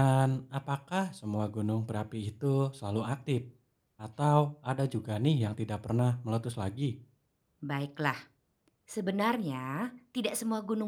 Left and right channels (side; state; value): both; identical; correlation 1.00